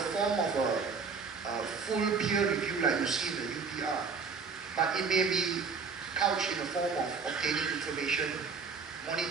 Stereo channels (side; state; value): left; quieter; 5.1 dB